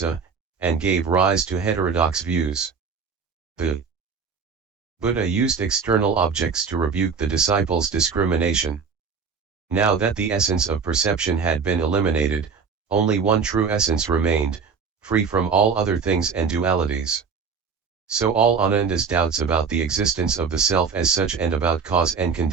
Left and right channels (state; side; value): quieter; left; 5.7 dB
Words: and gave rise to heterodox views. The Buddha used external objects to rebuke the disciples' discrimination. Now that the essence of perception had been eliminated, only one true essence remained, free from all other things and dualities. So all Ananda's doubts about the existence of the self as such and about cause and